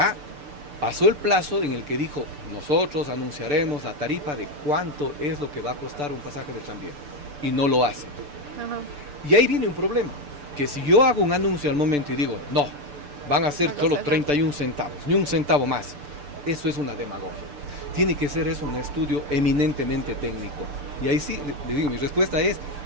pasó el plazo en el que dijo, nosotros anunciaremos la tarifa de cuánto es lo que va a costar un pasaje de tranvía, y no lo hace. Y ahí viene un problema, que si yo hago un anuncio al momento y digo, no, van a ser solo 31 centavos, ni un centavo más, eso es una demagogia. Tiene que ser eso un estudio eminentemente técnico. Y ahí sí, le digo, mi respuesta es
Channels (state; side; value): late; left; 6.8 ms